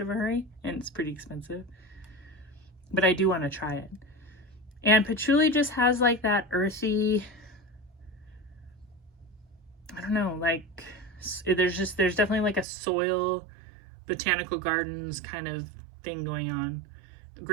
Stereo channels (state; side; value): drops out; left; at 12.7 s